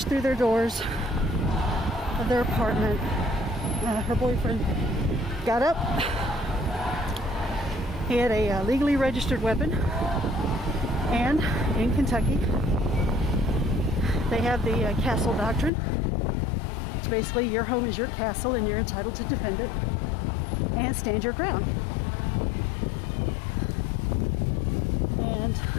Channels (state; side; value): drops out; right; at 15.7 s